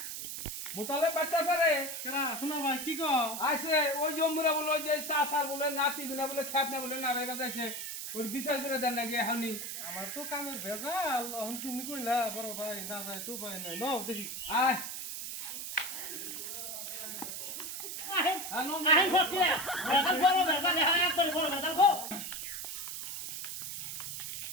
মুতলব বাড়তে আসে রে কেরা শোনা ভাই কি কো আইসে ওই জম্মুরা বলে ওই যে সাসার বলে নাতি গুনা বলে খ্যাত না বলে না রেগা যাইছে ওর বিচার করে দেন নাকি এখনই আমার তো কামের ভেজাল এখন তুমি কইলা বড় ভাই না যায় তো ভাই নাই নাও দেখি আয় আহেন হ্যাঁ নো আহেন ভর্তি বেজাল বড় বেজাল হ্যাঁ একবারে বড় বেজাল গো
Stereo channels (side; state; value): right; noise; hiss, 6 dB below the sound